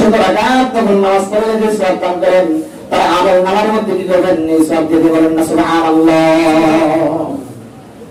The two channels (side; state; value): both; identical; correlation 1.00